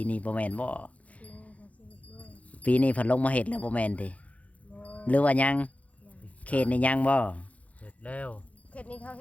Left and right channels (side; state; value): right; late; 0.067 ms